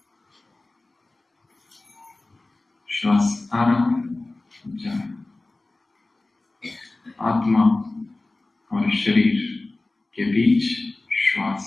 श्वास आ रहा है, जा रहा है। आत्मा और शरीर के बीच श्वास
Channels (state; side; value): quieter; right; 3.0 dB